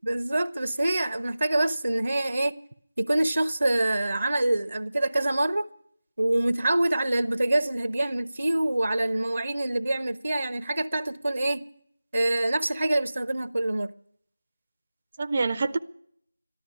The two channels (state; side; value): inverted; both; correlation -0.96